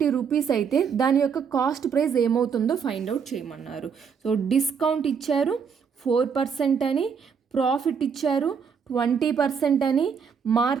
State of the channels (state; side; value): quieter; left; 6.5 dB